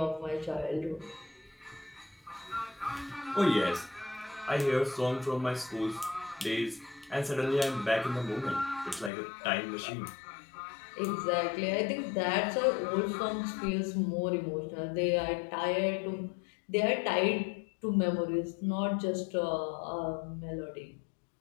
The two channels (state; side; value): drops out; right; at 9.1 s